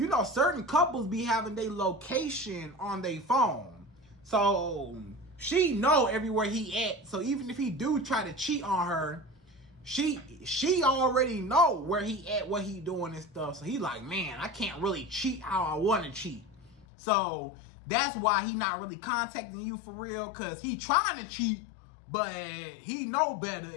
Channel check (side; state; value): right; drops out; at 16.9 s